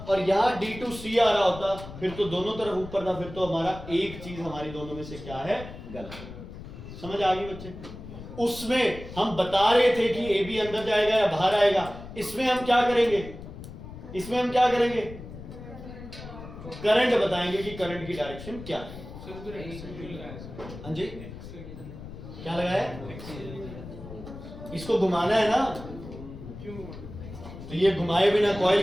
और यहाँ डी टू सी आ रहा होता, फिर तो दोनों तरफ ऊपर था, फिर तो हमारा एक चीज हमारी दोनों में से क्या है? गलत। समझ आ गई बच्चे? उसमें हम बता रहे थे कि ए बी अंदर जाएगा या बाहर आएगा। इसमें हम क्या करेंगे? इसमें हम क्या करेंगे? करंट बताएंगे कि करंट की डायरेक्शन क्या है। हाँ जी, क्या लगाया? इसको घुमाना है ना, तो ये घुमाए बिना कॉइल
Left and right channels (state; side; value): noise; left; rumble, 13 dB below the sound